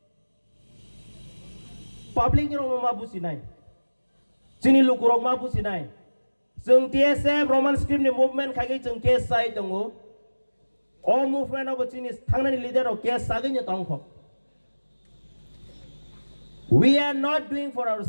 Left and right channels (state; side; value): inverted; both; correlation -1.00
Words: Public ni orang mabusi nai. Sini lu kurang mabusi nai. Seng TSF Roman script ni movement kaki jeng case sai tongo. All movement of sini tangna ni leader of case sagi ni tongko. We are not doing for